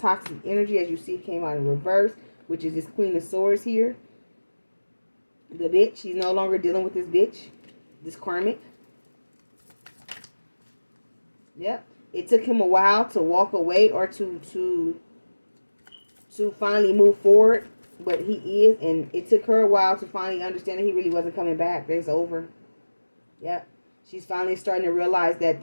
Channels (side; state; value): both; inverted; correlation -1.00